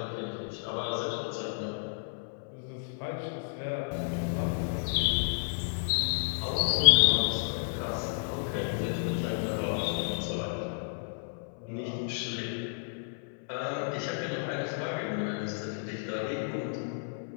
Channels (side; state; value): right; silent; 57 dB below the other